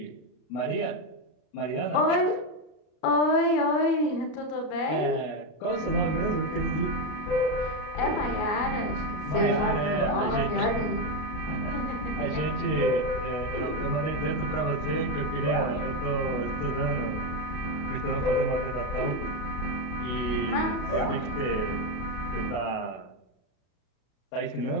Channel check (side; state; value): right; late; 33 ms